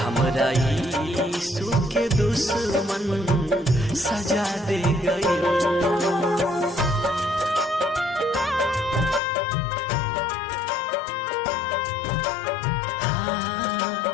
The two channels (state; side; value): drops out; right; at 9.2 s